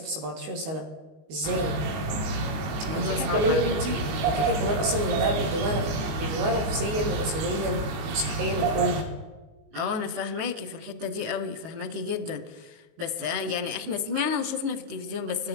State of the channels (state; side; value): late; left; 19 ms